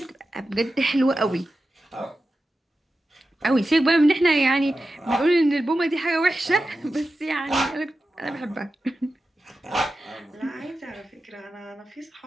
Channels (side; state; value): both; normal; correlation 0.92